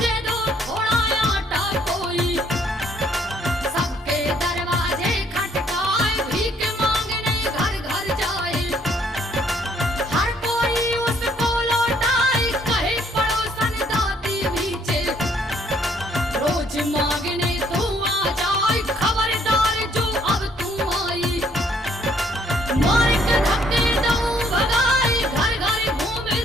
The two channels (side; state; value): both; normal; correlation 0.65